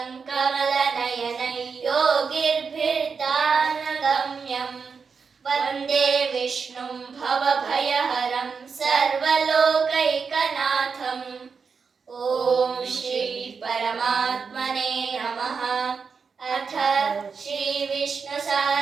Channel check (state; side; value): quieter; left; 5.5 dB